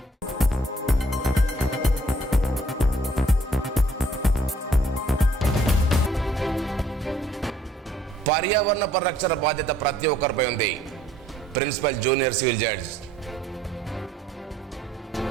పర్యావరణ పరిరక్షణ బాధ్యత ప్రతి ఒక్కరిపై ఉంది. Principal junior civil judge.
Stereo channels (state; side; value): normal; both; correlation 0.61